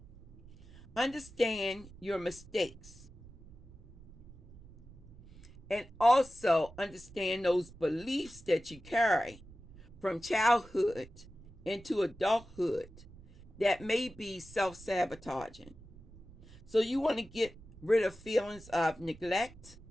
Understand your mistakes, and also understand those beliefs that you carry from childhood into adulthood that may be self-sabotaging. So you want to get rid of feelings of neglect,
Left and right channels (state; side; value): noise; right; rumble, 20 dB below the sound